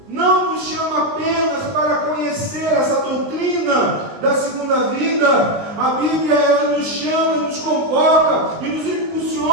não nos chama apenas para conhecer essa doutrina da segunda vida. A Bíblia ela nos chama, nos convoca e nos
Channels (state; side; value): late; left; 19 ms